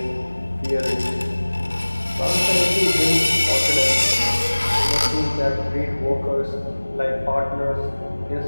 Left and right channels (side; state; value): both; inverted; correlation -1.00